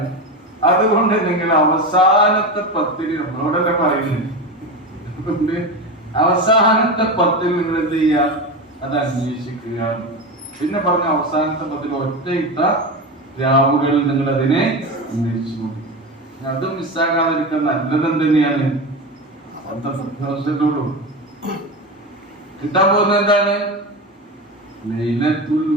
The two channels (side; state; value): both; normal; correlation 0.21